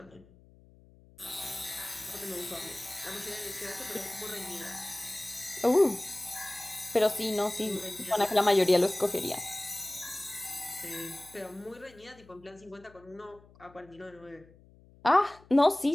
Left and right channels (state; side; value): noise; left; hum, 26 dB below the sound